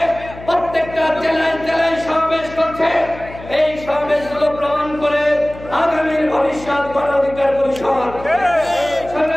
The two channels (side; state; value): left; noise; hum, 16 dB below the sound